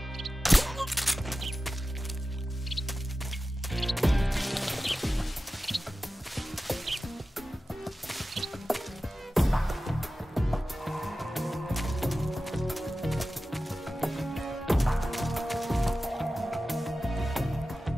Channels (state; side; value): normal; both; correlation 0.94